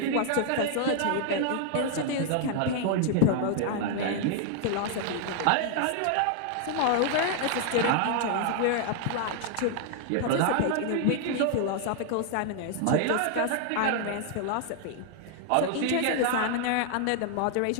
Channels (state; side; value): different; both; correlation 0.00